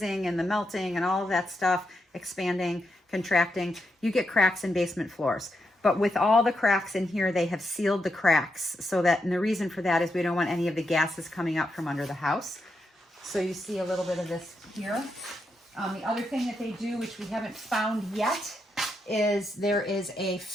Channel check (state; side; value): normal; both; correlation 0.83